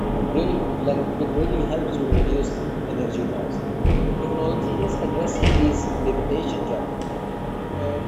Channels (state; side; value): identical; both; correlation 1.00